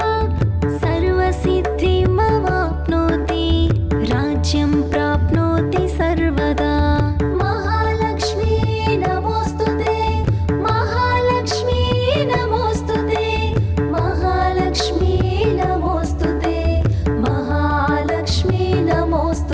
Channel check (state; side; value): identical; both; correlation 1.00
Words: सर्वसिद्धिमवाप्नोति राज्यं प्राप्नोति सर्वदा महालक्ष्मी नमोऽस्तु ते महालक्ष्मी नमोऽस्तु ते महालक्ष्मी नमोऽस्तु ते महालक्ष्मी